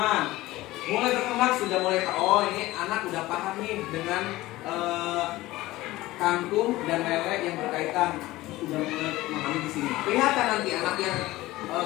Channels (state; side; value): quieter; right; 18.0 dB